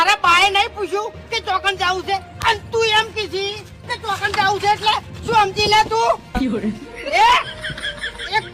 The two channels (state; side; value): identical; both; correlation 1.00